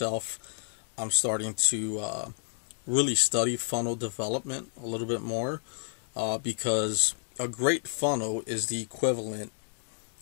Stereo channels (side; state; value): right; silent; digital silence